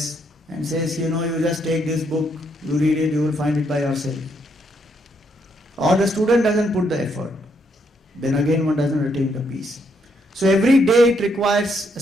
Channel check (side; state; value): both; normal; correlation 0.74